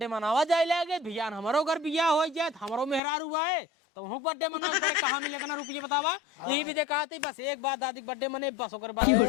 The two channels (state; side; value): drops out; right; at 3.0 s